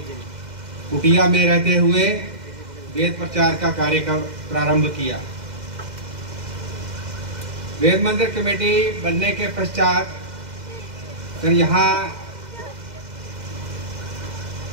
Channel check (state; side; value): late; left; 2.0 ms